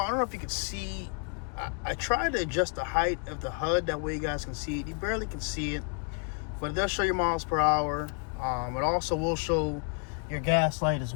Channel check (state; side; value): quieter; right; 39.8 dB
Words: don't know if you can see. I tried to adjust the height of the HUD. That way you guys can see it. You barely can see it. But it does show your miles per hour. It also will show your gas light as